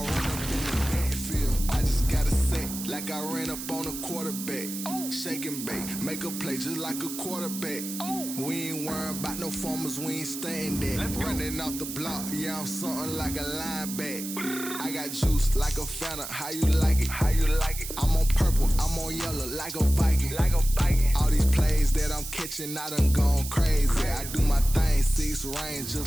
run up in the backfield. I just got a set, like I ran up on a quarterback. Shake and bake, make a play just like a quarterback. We ain't worrying about no formers, we ain't staying there. Running off the block, yeah, I'm something like a lineback. I got juice like a Fanta, how you like it? How you like it? I'm on purple, I'm on yellow, like a Viking. Like a Viking. All these plays that I'm catching, I done gone crazy. I do my thing, 6 range, just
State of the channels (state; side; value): noise; right; hiss, 8 dB below the sound